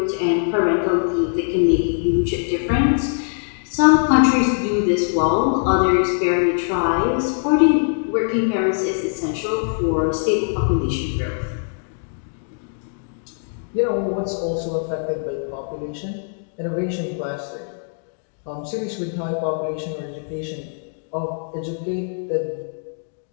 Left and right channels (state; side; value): silent; right; digital silence